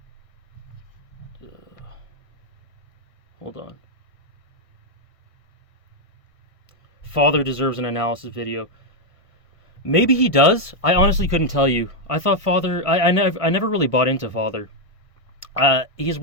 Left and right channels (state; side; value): late; right; 1.5 ms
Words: Hold on. Father deserves an analysis video. Maybe he does. I honestly couldn't tell you. I thought Father... I never really bought into Father. He's